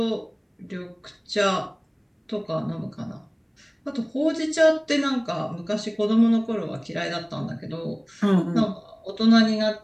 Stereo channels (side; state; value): both; identical; correlation 1.00